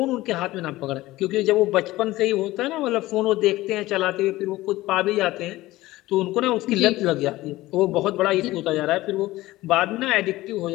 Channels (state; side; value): quieter; right; 17.6 dB